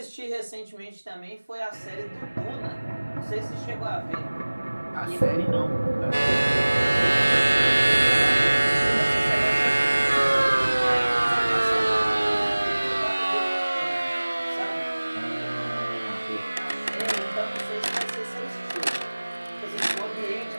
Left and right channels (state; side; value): inverted; both; correlation -1.00